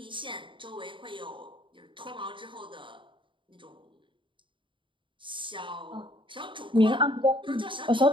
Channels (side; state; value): left; late; 0.24 ms